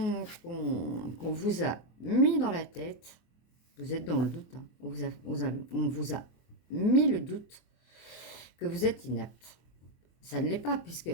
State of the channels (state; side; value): late; right; 24 ms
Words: vous a mis dans la tête. Vous êtes dans le doute, hein. On vous a mis le doute que vous êtes inapte. Ça ne l'est pas,